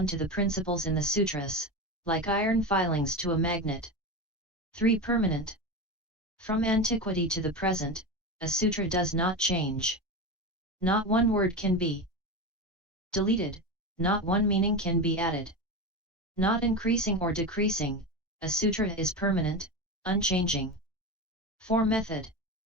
to the principles in the sutras, like iron filings to a magnet. 3. Permanent. From antiquity to the present, a sutra does not change. Not one word can be deleted, not one meaning can be added. Not increasing or decreasing, a sutra is permanent, unchanging. 4. Method.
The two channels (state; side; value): normal; both; correlation 0.21